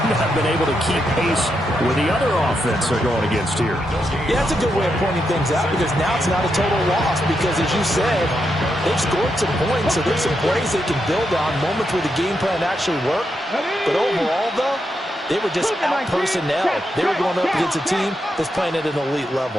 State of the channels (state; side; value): normal; both; correlation 0.83